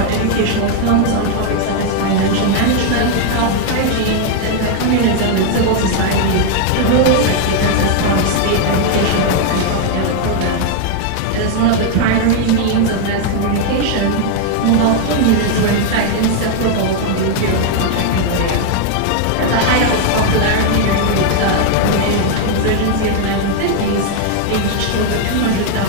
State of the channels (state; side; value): different; both; correlation 0.00